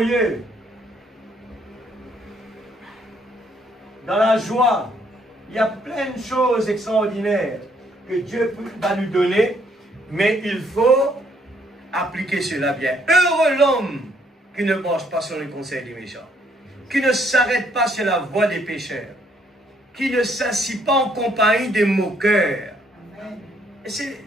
dans la joie. Il y a plein de choses extraordinaires que Dieu va nous donner, mais il faut appliquer cela bien. Heureux l'homme qui ne marche pas sur le conseil des méchants, qui ne s'arrête pas sur la voie des pécheurs, qui ne s'assit pas en compagnie des moqueurs.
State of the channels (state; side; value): normal; both; correlation 0.68